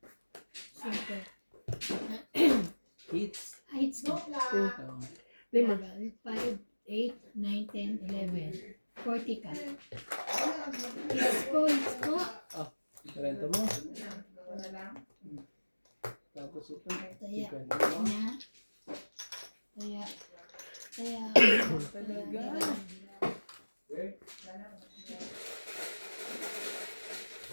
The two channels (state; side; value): inverted; both; correlation -1.00